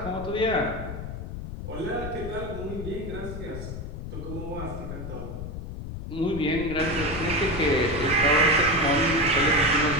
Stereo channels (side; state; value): left; noise; rumble, 8 dB below the sound